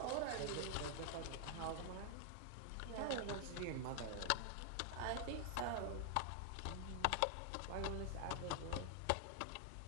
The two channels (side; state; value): both; different; correlation 0.00